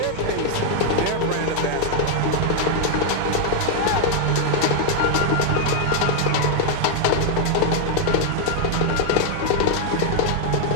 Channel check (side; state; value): both; different; correlation 0.00